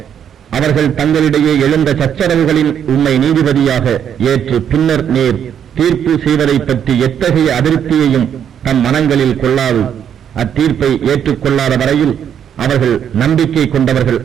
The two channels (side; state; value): left; quieter; 8.8 dB